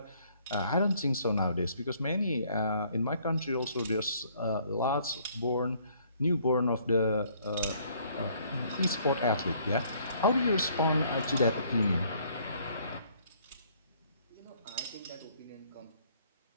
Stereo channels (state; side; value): inverted; both; correlation -0.63